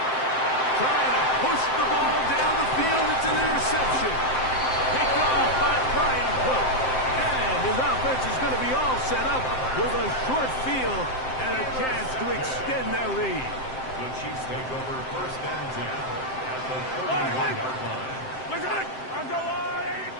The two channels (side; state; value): right; late; 7.7 ms